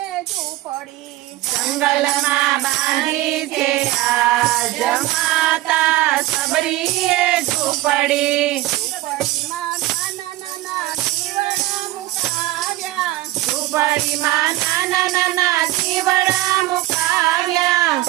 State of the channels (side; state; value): left; quieter; 16.9 dB